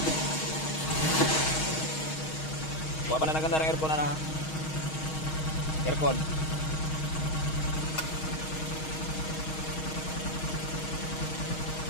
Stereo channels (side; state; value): right; late; 6.3 ms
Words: Kawa pa na naganda ng aircon na aircon.